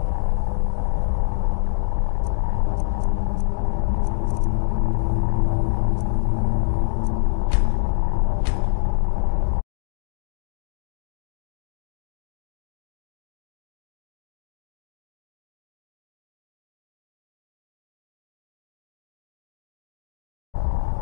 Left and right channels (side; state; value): right; silent; digital silence